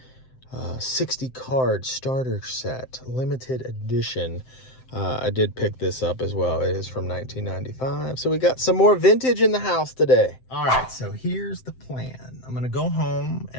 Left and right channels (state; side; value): late; right; 7.7 ms